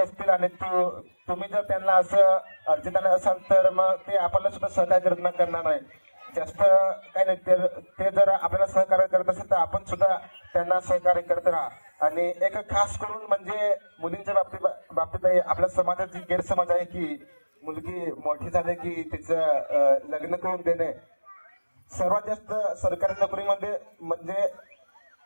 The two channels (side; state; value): both; inverted; correlation -1.00